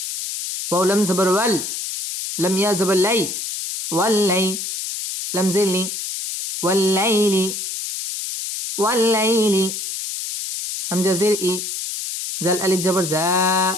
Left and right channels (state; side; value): noise; left; hiss, 5 dB below the sound